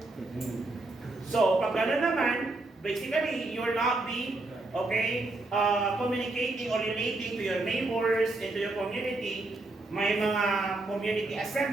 So, pag gano'n naman, basically, you will not be, communicating or relating to your neighbors and to your community. May mga community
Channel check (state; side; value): quieter; left; 3.0 dB